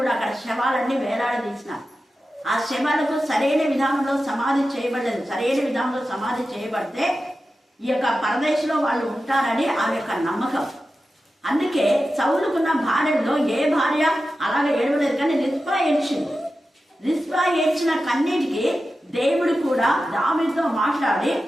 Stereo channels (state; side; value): normal; both; correlation 0.92